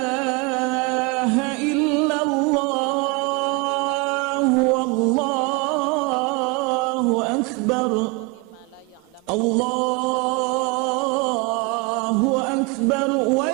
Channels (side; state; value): left; quieter; 24.7 dB